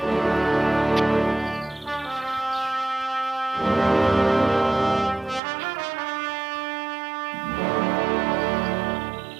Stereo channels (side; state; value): left; drops out; at 5.4 s